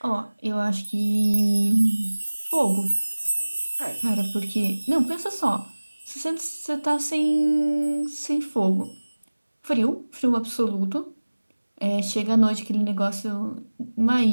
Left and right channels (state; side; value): inverted; both; correlation -1.00